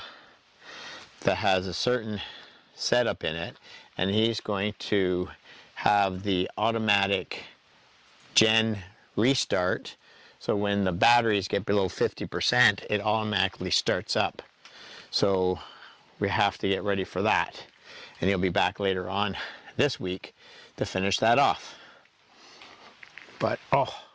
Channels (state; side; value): identical; both; correlation 1.00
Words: that has a certain setup in it, and he's going to have the automatic gen restart, so when the batteries get below 50%, it automatically starts up. So we have to get ready for that, and he'll be back later on this week to finish that off. But oh,